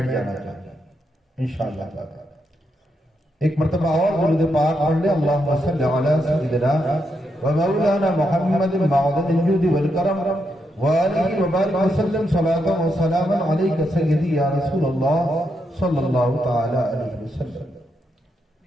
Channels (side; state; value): both; normal; correlation 0.81